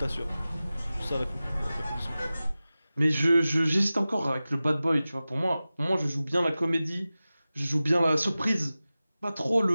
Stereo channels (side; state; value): both; inverted; correlation -0.96